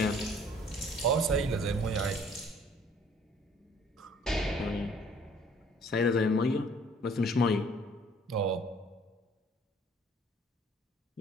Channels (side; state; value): both; normal; correlation 0.57